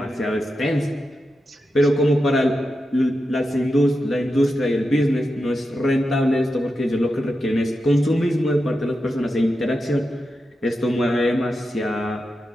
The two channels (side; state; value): both; normal; correlation 0.89